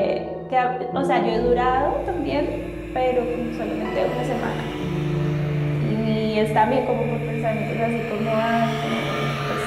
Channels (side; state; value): both; identical; correlation 1.00